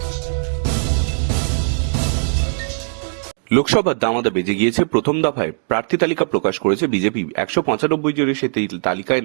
লোকসভার দামাদা বেজে গিয়েছে। প্রথম দফায় প্রার্থী তালিকা প্রকাশ করেছে বিজেপি। 195 জনের সেই তালিকায়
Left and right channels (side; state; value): left; silent; 66 dB below the other